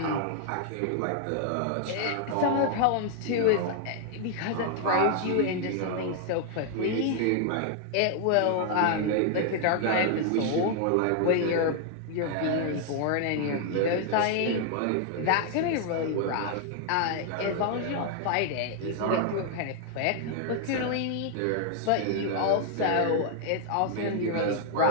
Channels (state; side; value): different; both; correlation 0.00